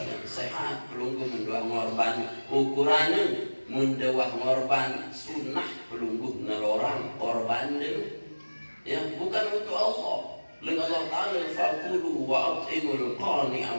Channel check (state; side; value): inverted; both; correlation -1.00